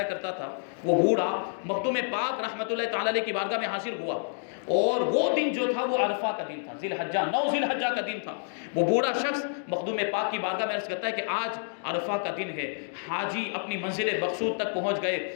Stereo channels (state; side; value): silent; right; digital silence